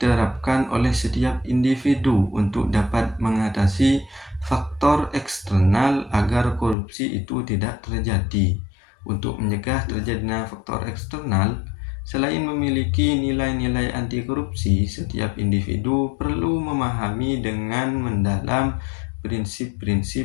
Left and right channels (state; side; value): drops out; right; at 6.8 s